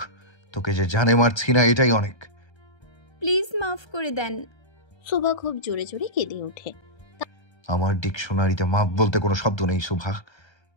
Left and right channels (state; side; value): late; right; 1.3 ms